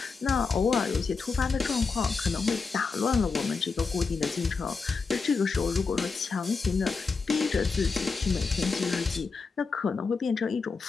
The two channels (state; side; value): quieter; right; 4.7 dB